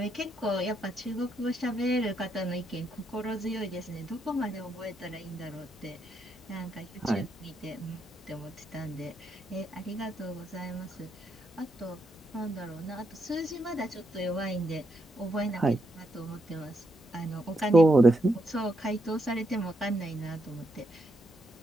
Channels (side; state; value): both; normal; correlation 0.79